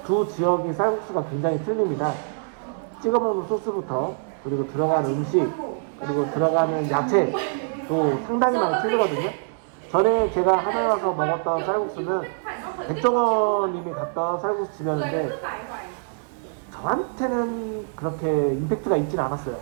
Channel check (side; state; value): left; silent; digital silence